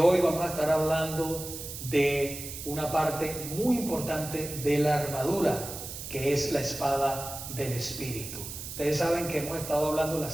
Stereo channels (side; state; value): right; noise; hiss, 9 dB below the sound